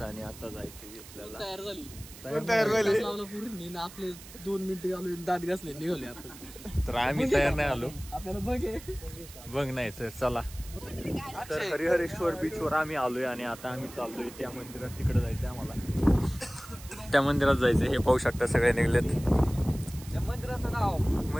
आणि आता जायचंय आपल्याला. तयार झाली. पूर्ण आपले 2 मिनिटं आलो दात घासले निघाले आपण. तर आम्ही तयार नाही आलो. आपल्याला बघ नाही तर चला. तर हरिहरेश्वर बीचवर आम्ही आलोय आणि आता आम्ही चाललोय त्या मंदिरात. तिकडे जायचंय आम्हाला. त्या मंदिरात जायचंय. हे पाहू शकता सगळे निघलेत. मंदिराचं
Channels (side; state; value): right; noise; hiss, 17 dB below the sound